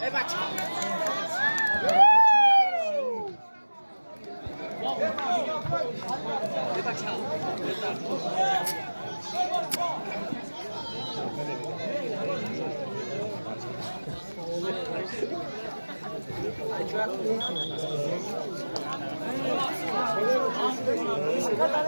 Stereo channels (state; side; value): inverted; both; correlation -1.00